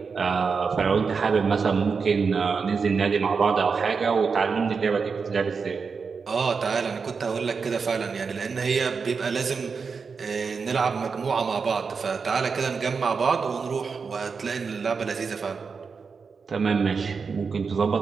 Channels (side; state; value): left; quieter; 5.3 dB